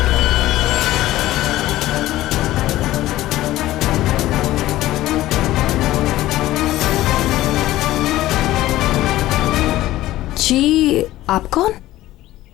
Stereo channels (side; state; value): right; quieter; 15.7 dB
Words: जी, आप कौन?